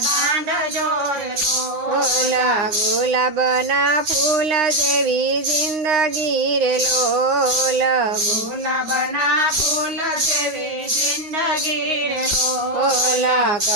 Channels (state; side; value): late; left; 9.5 ms